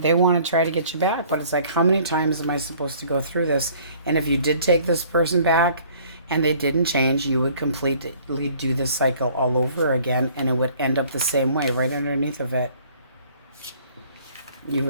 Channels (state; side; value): inverted; both; correlation -0.55